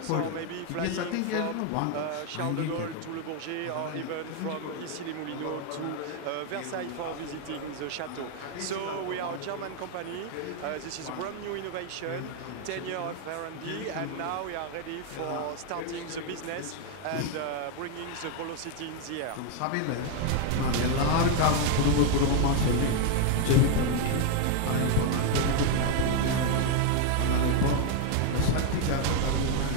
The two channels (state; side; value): different; both; correlation 0.01